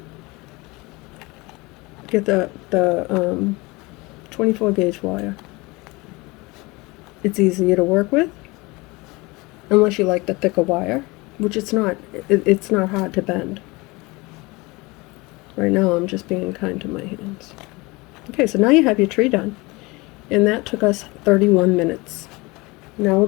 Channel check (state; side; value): quieter; right; 24.0 dB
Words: get the 24 gauge wire. It's easier to work with, unless you like the thicker wire, which it's not hard to bend. Right now I'm just being kind to my hands. Okay, so now you have your tree done, and that took us 31 minutes. Now we're